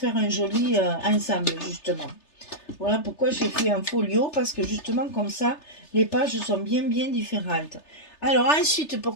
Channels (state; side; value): late; right; 3.3 ms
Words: un joli ensemble, justement. Voilà pourquoi j'ai fait un folio parce que justement, comme ça, les pages sont bien, bien différentes. Alors ensuite,